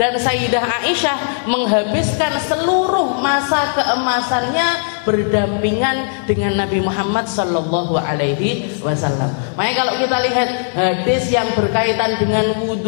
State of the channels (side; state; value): right; silent; digital silence